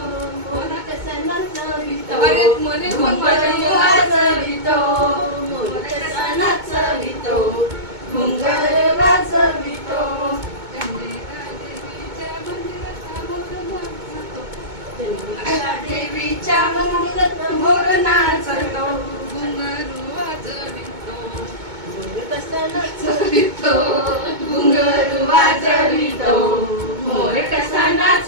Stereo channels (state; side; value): late; left; 2.2 ms